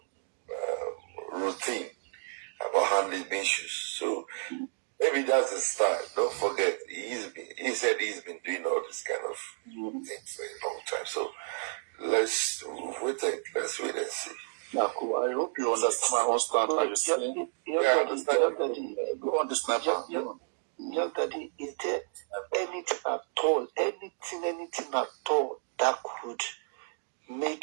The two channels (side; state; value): left; silent; digital silence